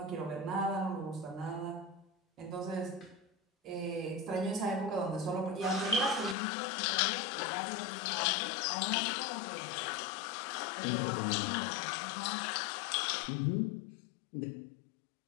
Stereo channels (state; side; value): drops out; right; at 6.4 s